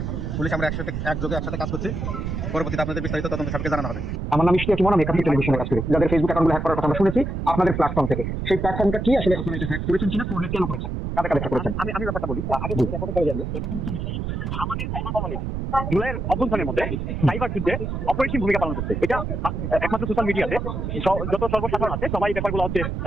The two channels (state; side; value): noise; right; rumble, 3 dB below the sound